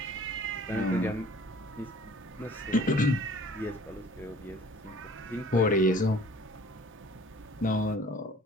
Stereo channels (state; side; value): normal; both; correlation 0.51